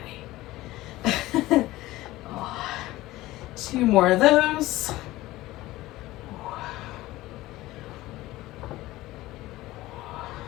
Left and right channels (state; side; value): quieter; right; 17.5 dB